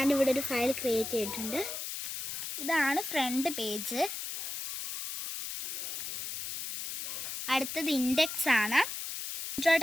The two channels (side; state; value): left; noise; hiss, 5 dB below the sound